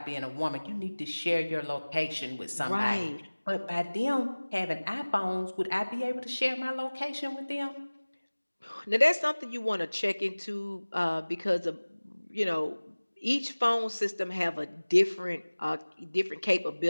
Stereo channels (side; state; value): both; inverted; correlation -1.00